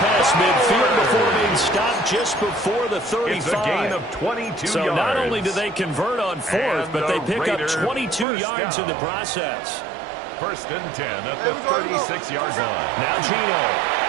past midfield before being stopped just before the 35. It's a gain of 22 so yards. Not only do they convert on 4th, but they pick up 22 yards in the process. 1st and 10 at the 36-yard line. Now Gino.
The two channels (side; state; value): left; drops out; at 8.2 s